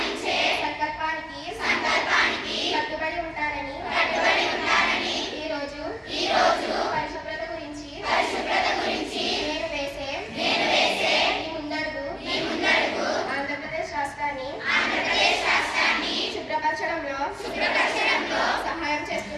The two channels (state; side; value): identical; both; correlation 1.00